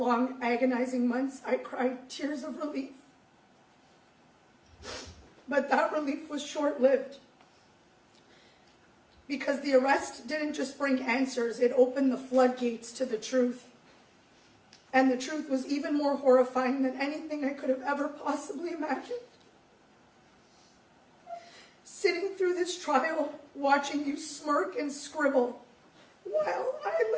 agonizing months, I cried tears of relief. But that relief was short-lived, because the arrest didn't just bring answers, it opened the floodgates to the truth. And the truth was even more horrifying than anything I could have ever possibly imagined. Sitting through this trial, watching you smirk and scribble, while I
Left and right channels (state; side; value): identical; both; correlation 1.00